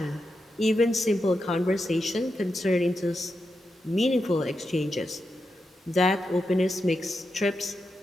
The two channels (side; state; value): both; normal; correlation 0.87